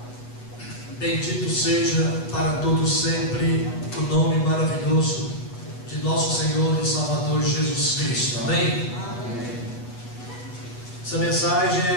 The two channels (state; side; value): late; right; 8.2 ms